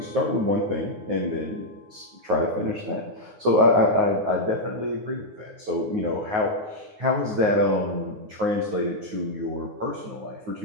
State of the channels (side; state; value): left; late; 9.5 ms